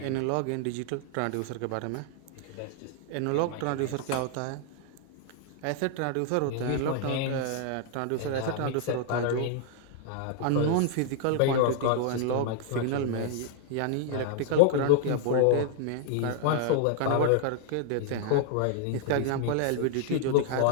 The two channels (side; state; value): both; different; correlation 0.00